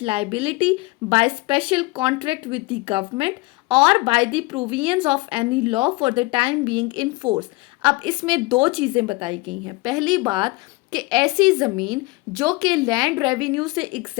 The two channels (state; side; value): quieter; right; 22.9 dB